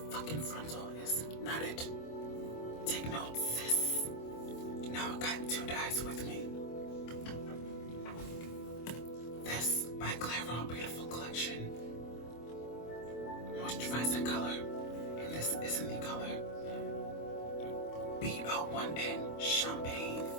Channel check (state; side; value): late; right; 25 ms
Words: fucking frontal is not it. Take notes, sis. Now I got 2 dyes with me. This by Clairol Beautiful Collection. Moisturizing color. And this is in the color B01N Champagne.